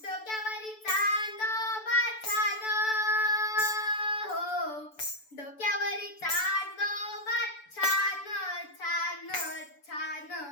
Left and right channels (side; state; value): right; late; 6.9 ms